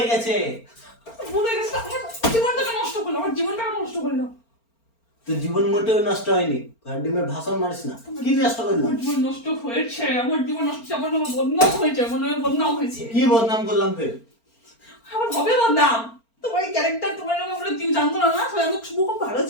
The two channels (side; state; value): right; late; 4.4 ms